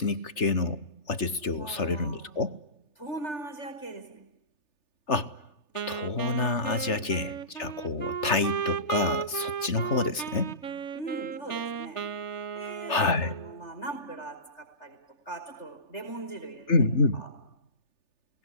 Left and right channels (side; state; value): right; late; 3.4 ms